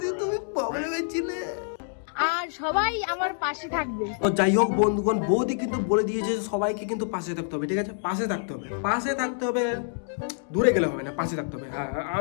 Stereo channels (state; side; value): silent; right; digital silence